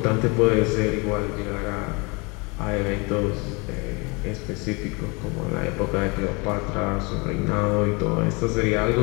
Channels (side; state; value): right; quieter; 29.1 dB